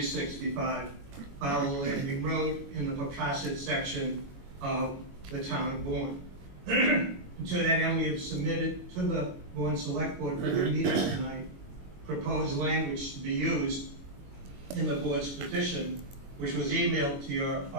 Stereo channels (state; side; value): late; left; 21 ms